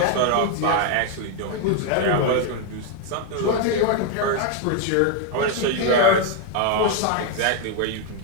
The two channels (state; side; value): different; both; correlation 0.01